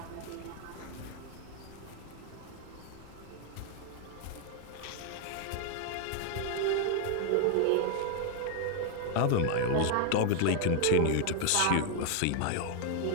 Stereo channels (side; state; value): both; different; correlation 0.00